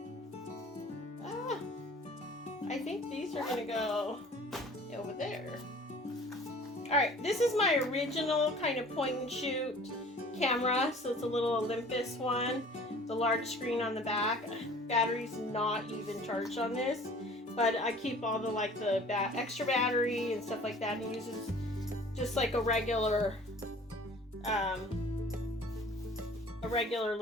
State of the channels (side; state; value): both; normal; correlation 0.48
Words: I think these are going to go over there. Alright, this is my original kind of point and shoot camera. So it's a little Olympus one. The large screen on the back. Battery's not even charged on this. But I keep all the like the extra battery and stuff like that. And it uses just like a regular little